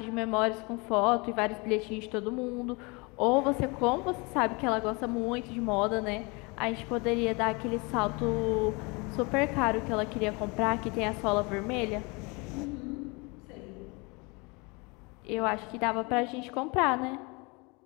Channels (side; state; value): right; quieter; 28.4 dB